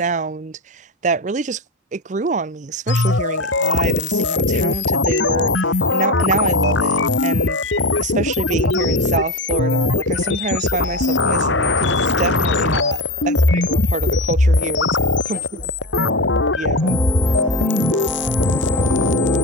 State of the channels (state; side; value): normal; both; correlation 0.20